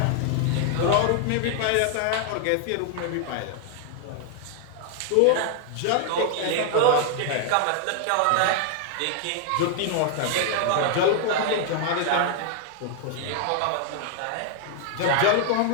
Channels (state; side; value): different; both; correlation 0.00